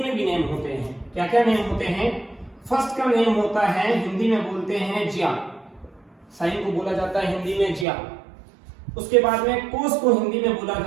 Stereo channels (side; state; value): left; drops out; at 7.9 s